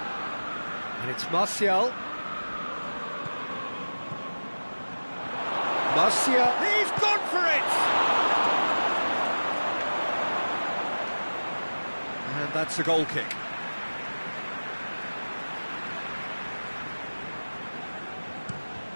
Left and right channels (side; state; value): both; inverted; correlation -1.00